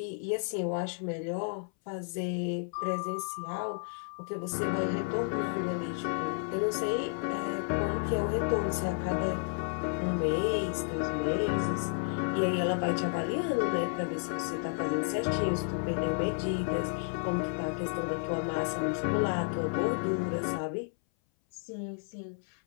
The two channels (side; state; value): right; silent; 57 dB below the other